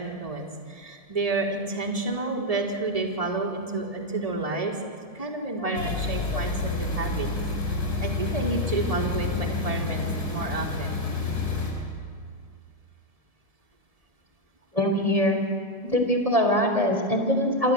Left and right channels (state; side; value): late; left; 1.7 ms